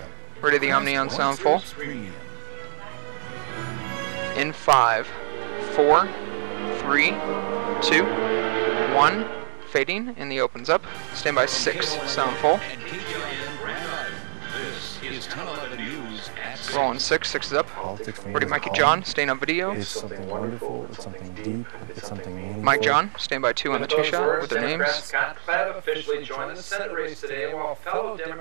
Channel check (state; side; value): silent; left; 61 dB below the other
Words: Ready the Omni on sound full. In 5, 4, 3, 2, 1. Fading, and the opens up. Stand by 6, sound full. Rolling 6, 6 is up. Ready Mikey John, staying on video. It's something wonderful, it's something deep, it's something meaningful. Mike John, stand by 2 on the 2 shot with their names. Scott Klebb officially joined the Senate race today, while fellow